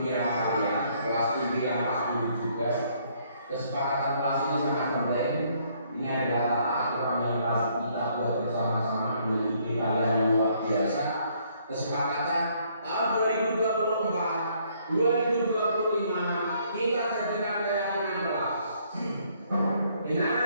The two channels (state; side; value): inverted; both; correlation -0.67